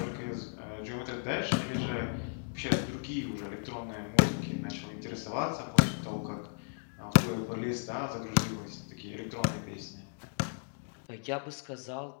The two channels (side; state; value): right; silent; digital silence